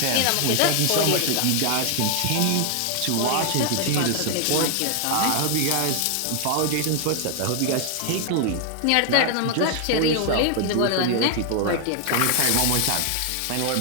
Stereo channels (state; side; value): different; both; correlation 0.00